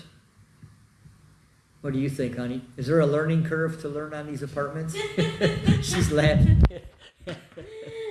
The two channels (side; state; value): both; identical; correlation 1.00